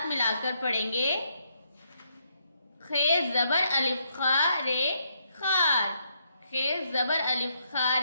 ملا کر پڑھیں گے، خے زبر الف خا رے خار، خے زبر الف خا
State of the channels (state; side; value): inverted; both; correlation -0.75